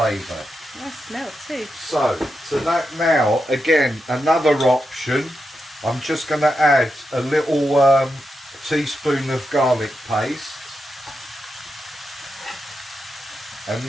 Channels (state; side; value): normal; both; correlation 0.87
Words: Nice smell too. So to that now, again, another option, I'm just going to add a little teaspoon of garlic paste. And